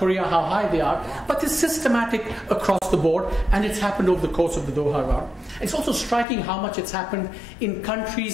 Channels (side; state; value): right; drops out; at 6.2 s